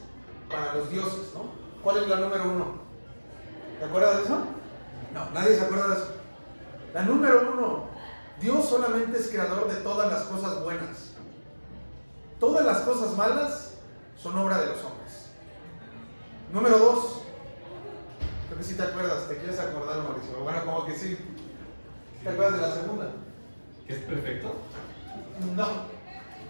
para los dioses, ¿no? ¿Cuál es la número 1? ¿Te acuerdas de eso? No, nadie se acuerda de eso. La número 1, Dios solamente es creador de todas las cosas buenas. Todas las cosas malas son obra de los hombres. Número 2, creo que sí te acuerdas, ¿te quieres acordar, Mauricio? Bueno, como que sí. ¿Te acuerdas de la segunda? ¿Que es perfecto? No.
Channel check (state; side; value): inverted; both; correlation -1.00